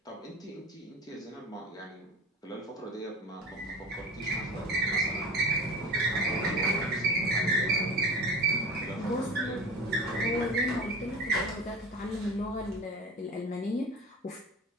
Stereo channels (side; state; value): both; normal; correlation 0.33